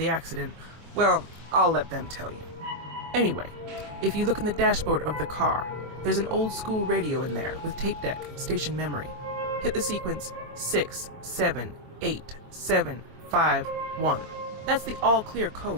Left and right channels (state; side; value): late; left; 24 ms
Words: accident. Well, I'll let them tell you. Anyway, if you look in the dashboard of the car, there's an old school radio in there with tape deck, station memory. Hit the sequence 6, 7, 8, 7, 5, 1. That's the all-clear